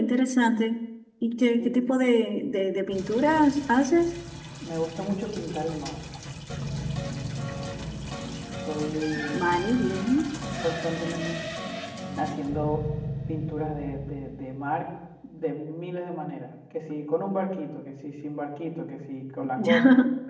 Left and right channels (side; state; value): both; identical; correlation 1.00